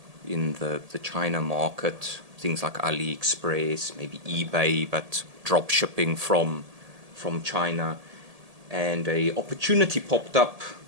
in the China market, things like AliExpress, maybe eBay, but drop shipping from China. And a opportunity popped up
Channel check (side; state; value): left; late; 1.8 ms